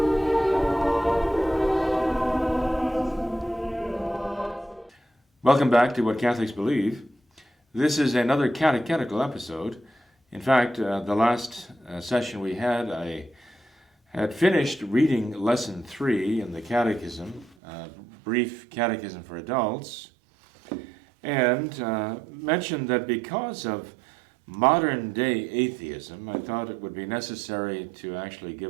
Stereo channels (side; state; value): left; drops out; at 17.6 s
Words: Welcome back to What Catholics Believe. This is another catechetical episode. In fact, the last session we had, I had finished reading Lesson 3 in the Catechism, Brief Catechism for Adults, and mentioned that because of modern-day atheism, I thought it would be necessary to actually